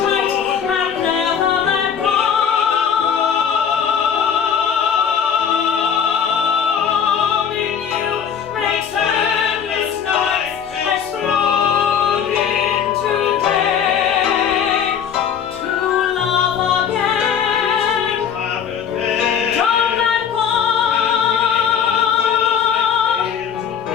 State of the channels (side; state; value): right; quieter; 7.9 dB